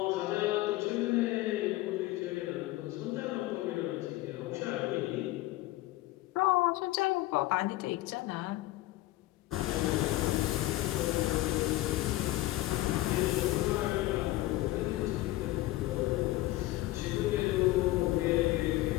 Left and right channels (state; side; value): quieter; right; 17.4 dB